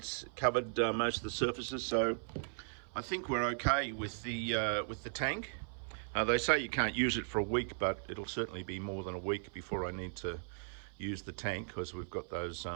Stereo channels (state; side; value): silent; left; 53 dB below the other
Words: covered most of the surfaces. So I think we're okay with the tank. They say you can't use it for a week, but it'll certainly be more than a week before I need to use the tank, because we've got those